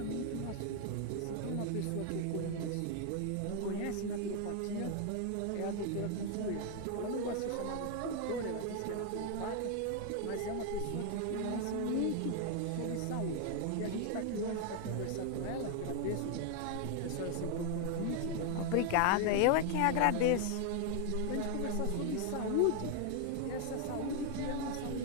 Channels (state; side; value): different; both; correlation 0.00